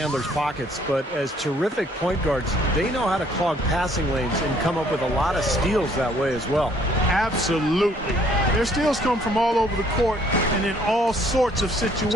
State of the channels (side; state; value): both; normal; correlation 0.62